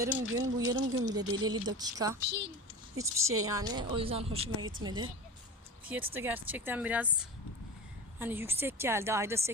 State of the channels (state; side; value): normal; both; correlation 0.31